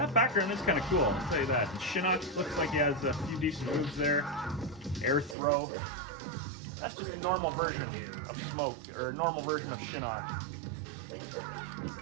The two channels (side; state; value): left; drops out; at 5.4 s